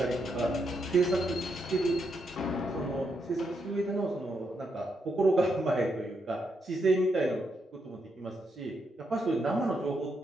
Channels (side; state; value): both; normal; correlation 0.80